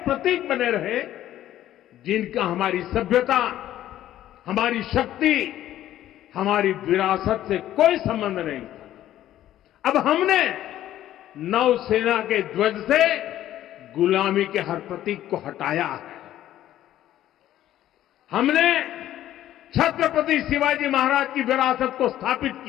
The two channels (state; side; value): quieter; right; 12.8 dB